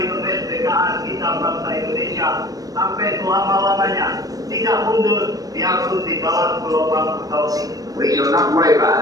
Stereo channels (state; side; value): late; left; 0.18 ms